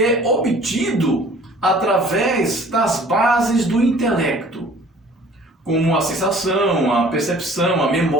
é obtido através das bases do intelecto, como a sensação, a percepção, a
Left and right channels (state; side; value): normal; both; correlation 0.51